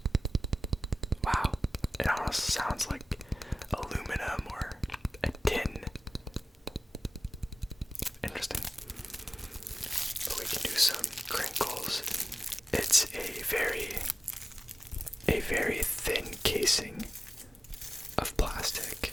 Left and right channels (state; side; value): normal; both; correlation 0.96